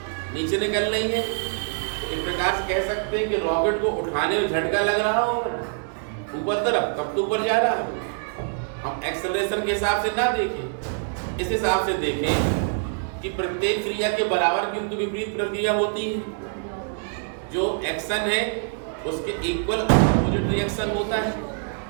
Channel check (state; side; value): silent; left; 62 dB below the other